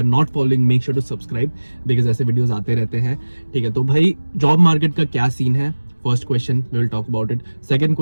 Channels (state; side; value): inverted; both; correlation -1.00